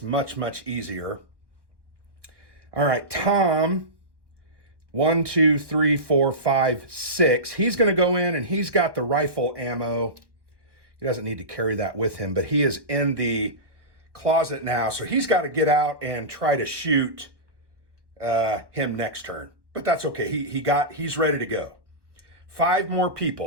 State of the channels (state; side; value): late; left; 1.0 ms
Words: much, much easier. All right, Tom, 1, 2, 3, 4, 5, 6. He's going to go in and he's got the rifle ammo. He doesn't need to carry that with him, but he is in the closet now. So he's got to get out and try to shoot him next turn. But that's okay. He's ready to go. 5 more